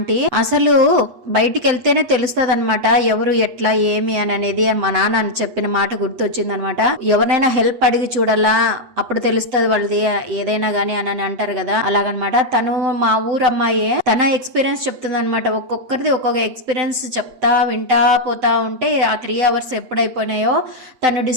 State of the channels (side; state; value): left; late; 7.8 ms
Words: అసలు బయటికి వెళ్తేనే తెలుస్తుంది అనమాట ఎవరు ఎట్లా ఏమి అని అనేది. మా నాన్న అని చెప్పిన మాట గుర్తొచ్చింది అనమాట. ఎవరైనా హెల్ప్ అడిగి చూడాలా, అప్పుడు తెలుస్తుంది వాళ్ళది ఏదైనా గానీ అని అంటారు కదా, అలాగనమాట. తను మా ఊరు అమ్మాయే, తన ఎక్స్పీరియన్స్ చెప్తుంది అనమాట. ఒక్కొక్కరిది ఒక్కొక్క ఎక్స్పీరియన్స్ చెప్తా వింటా పోతా ఉంటే ఆ 3 hours ఎప్పుడైపోయినాయో. తను